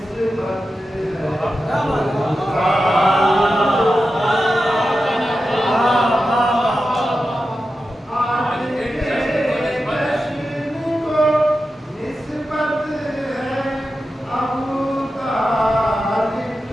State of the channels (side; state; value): both; normal; correlation 0.91